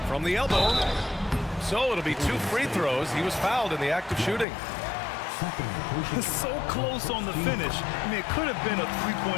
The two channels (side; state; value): right; drops out; at 4.5 s